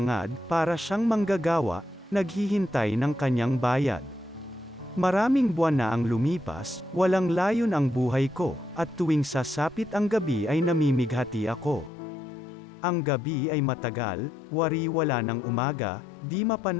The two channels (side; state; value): right; drops out; at 11.9 s